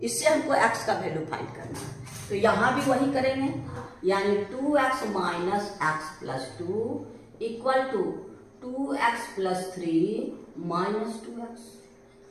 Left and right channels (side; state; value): both; identical; correlation 1.00